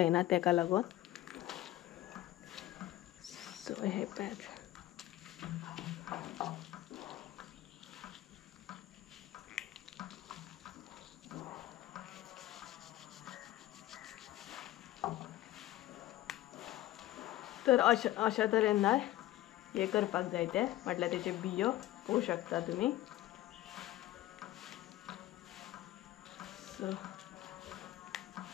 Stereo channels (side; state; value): right; quieter; 15.2 dB